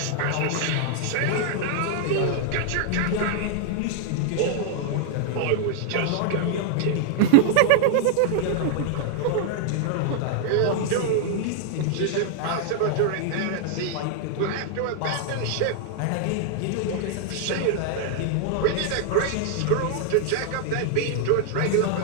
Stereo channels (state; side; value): different; both; correlation 0.00